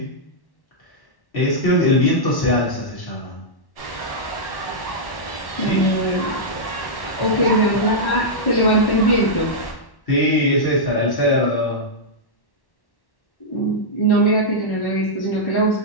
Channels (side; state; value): right; late; 1.1 ms